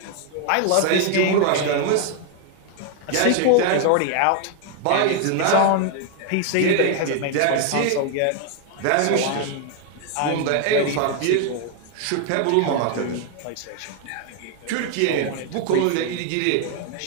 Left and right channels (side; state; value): both; different; correlation 0.00